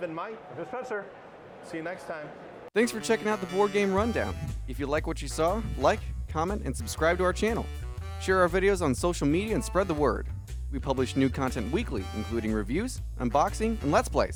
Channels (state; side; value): identical; both; correlation 1.00